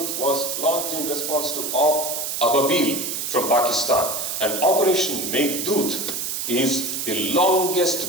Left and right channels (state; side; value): noise; right; hiss, 3 dB below the sound